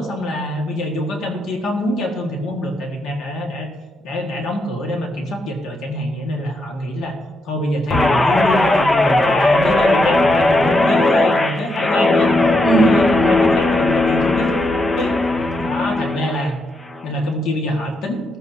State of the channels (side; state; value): both; normal; correlation 0.81